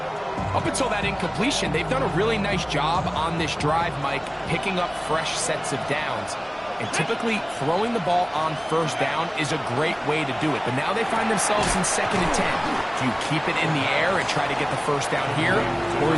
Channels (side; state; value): both; identical; correlation 1.00